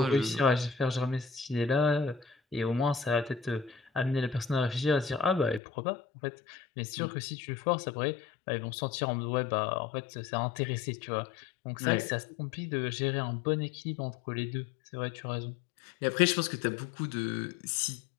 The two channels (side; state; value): right; drops out; at 5.6 s